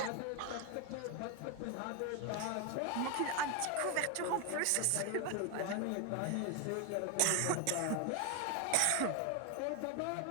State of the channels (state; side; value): different; both; correlation 0.01